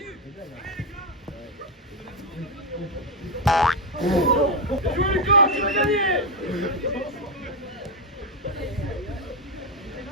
Jouez le camp, tu vas gagner!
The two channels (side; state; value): both; normal; correlation 0.06